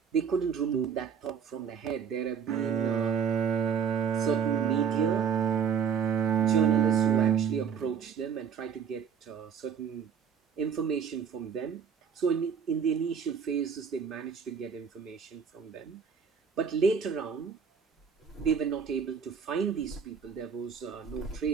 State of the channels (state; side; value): quieter; left; 7.1 dB